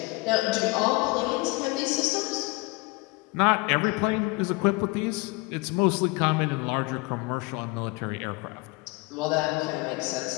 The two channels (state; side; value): quieter; right; 25.0 dB